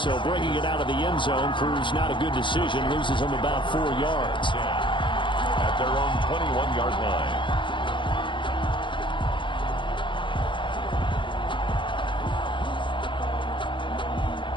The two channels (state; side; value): late; right; 0.23 ms